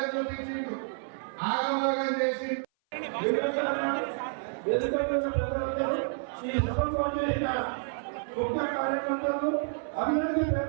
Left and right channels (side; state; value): left; silent; 56 dB below the other